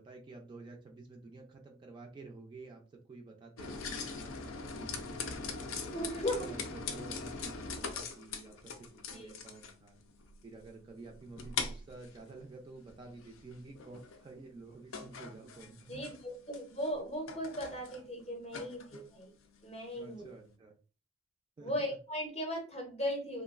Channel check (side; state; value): both; normal; correlation 0.26